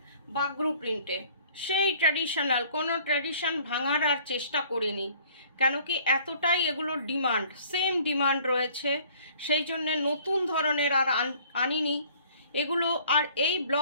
বাগরু প্রিন্টে, সেই ট্র্যাডিশনাল, কোনো ট্র্যাডিশন ভাঙার আর চেষ্টা করিনি, কেন কি এতটাই এগুলোর ডিমান্ড, সেম ডিমান্ড রয়েছে, সেই জন্যে নতুন ধরনের আর আনিনি এগুলো। আর এই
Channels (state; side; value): inverted; both; correlation -0.55